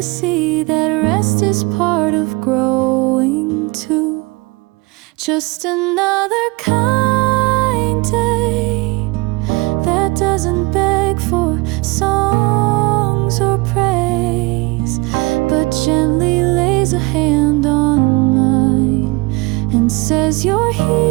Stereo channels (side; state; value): left; quieter; 24.8 dB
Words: see that rest is part of growing too. Just another kind day that doesn't beg for songs or praise, but gently lays a hand on mine and says you're